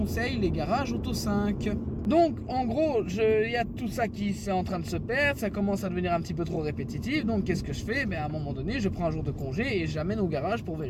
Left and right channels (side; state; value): both; identical; correlation 1.00